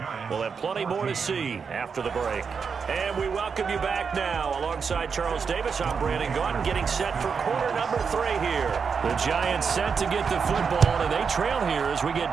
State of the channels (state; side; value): quieter; left; 5.9 dB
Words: We'll have plenty more to see after the break. And we welcome you back now. Alongside Charles Davis, I'm Brandon Gaudin, getting set for quarter number 3 here. The Giants set to get the football, and they trail here as we